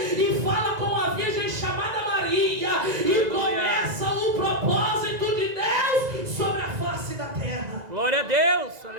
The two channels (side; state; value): left; late; 2.0 ms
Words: e fala com a virgem chamada Maria, e começa o propósito de Deus sobre a face da terra. Glória a Deus.